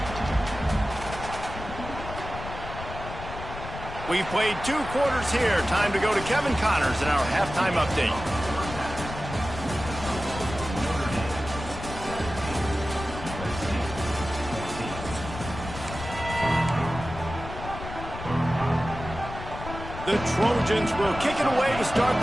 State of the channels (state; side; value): noise; left; rumble, 10 dB below the sound